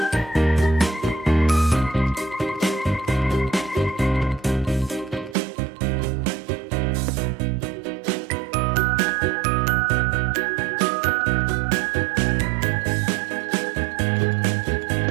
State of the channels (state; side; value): drops out; left; at 5.4 s